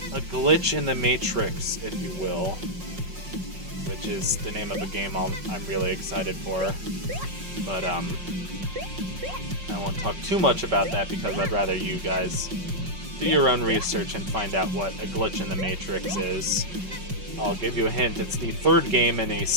A glitch in the Matrix, if you will. Which is the name of a game I'm really excited for. But, I won't talk too much about that because I'd rather you guys do your own research and find out what a glitch in the Matrix is. I'll give you a hint. It's the third game in a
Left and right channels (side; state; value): left; late; 5.6 ms